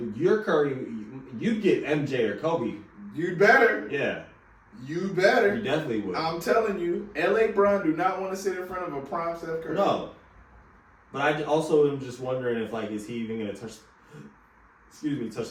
your Curry, you'd get MJ or Kobe. You better. Yeah, You better. you definitely would. I'm telling you, LA Bron do not want to sit in front of a prime Steph Curry. No. But I also am just wondering if, like, is he even going to touch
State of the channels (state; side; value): identical; both; correlation 1.00